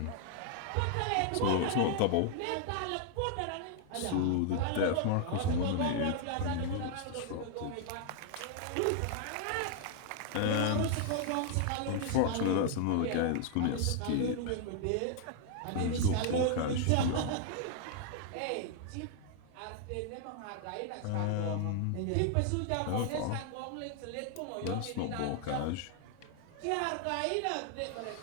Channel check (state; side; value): different; both; correlation 0.00